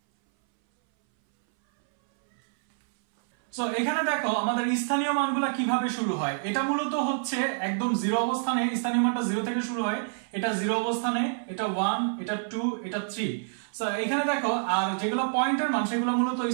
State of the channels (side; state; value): left; silent; 60 dB below the other